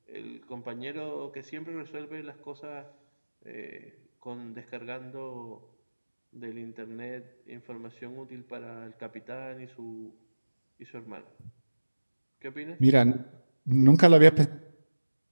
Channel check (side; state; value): both; inverted; correlation -1.00